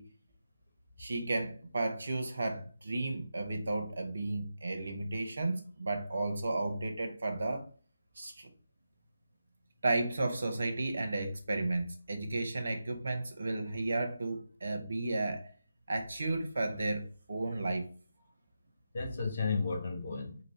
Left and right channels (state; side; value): inverted; both; correlation -0.89